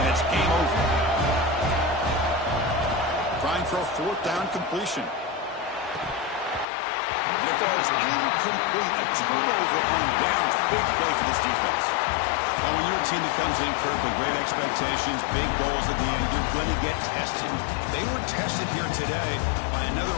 it's game over. Trying for a fourth down completion. And it falls incomplete. A turnover on downs. Big play for this defense. Well, when you're a team that comes in, Kirk, with great expectations, big goals at the end, you're going to get tested. They were tested here today by another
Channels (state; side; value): drops out; right; at 6.7 s